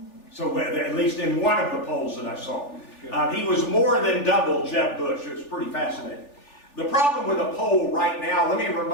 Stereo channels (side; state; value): right; late; 3.4 ms